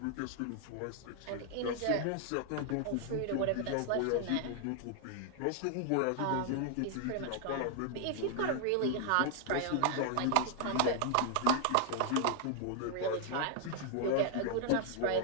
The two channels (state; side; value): different; both; correlation 0.00